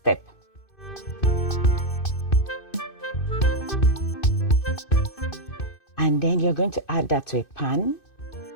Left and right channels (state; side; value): late; right; 2.6 ms